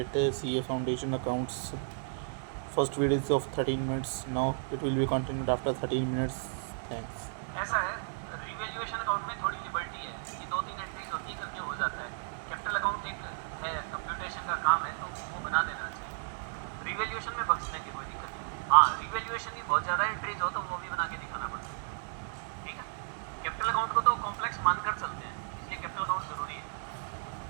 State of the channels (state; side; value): silent; left; digital silence